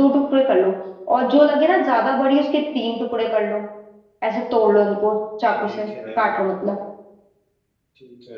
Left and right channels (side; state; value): both; identical; correlation 1.00